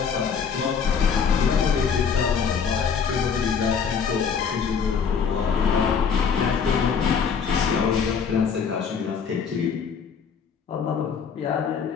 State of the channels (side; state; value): right; quieter; 6.5 dB